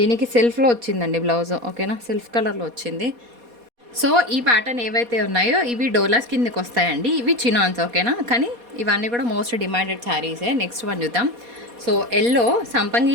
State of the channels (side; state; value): left; late; 4.2 ms